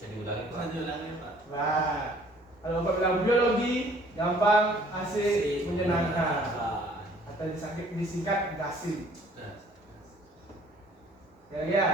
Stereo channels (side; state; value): both; normal; correlation 0.56